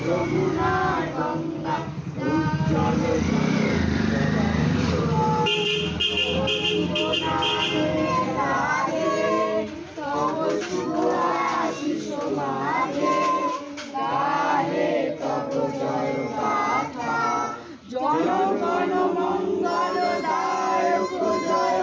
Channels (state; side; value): identical; both; correlation 1.00